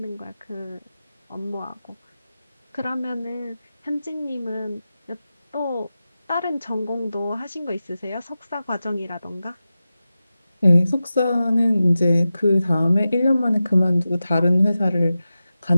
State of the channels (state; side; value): inverted; both; correlation -0.93